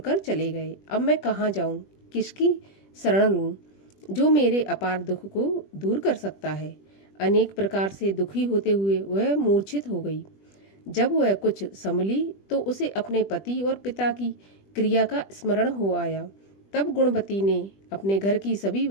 चले गए। अब मैं कहाँ जाऊँ, किसकी शरण लूँ, जो मेरे अपार दुख को दूर कर सकता है। अनेक प्रकार से दुखी होते हुए वह मूर्छित हो गई। जब वह कुछ संभली तो उसे अपने पति और पिता की क्रिया का स्मरण हो आया। तब गुणवती ने अपने घर की सभी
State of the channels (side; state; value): right; late; 20 ms